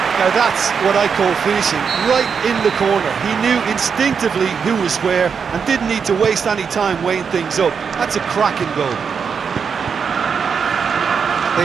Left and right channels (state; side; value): quieter; left; 6.3 dB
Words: Now that's what I call finishing, right in the corner. He knew instinctively who was where and didn't need to waste any time weighing things up. That's a cracking goal.